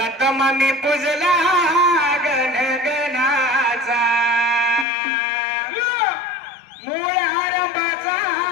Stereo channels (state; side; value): drops out; right; at 4.9 s